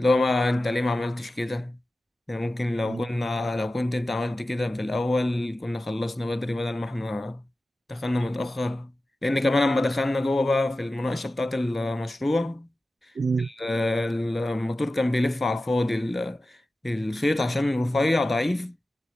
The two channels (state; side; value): normal; both; correlation 0.95